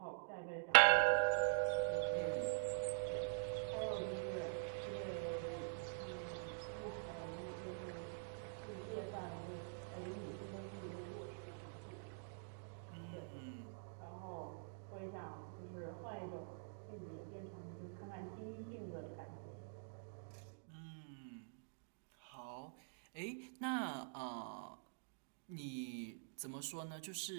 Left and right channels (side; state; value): left; silent; digital silence